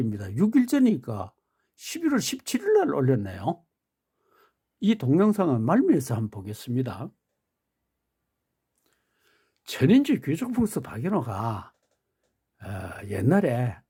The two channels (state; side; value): identical; both; correlation 1.00